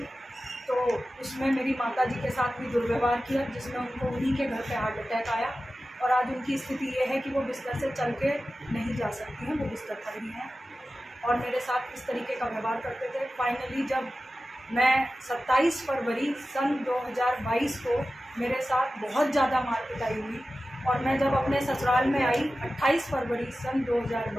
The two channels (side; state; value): both; normal; correlation 0.94